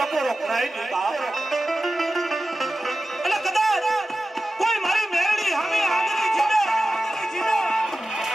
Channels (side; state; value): both; normal; correlation 0.94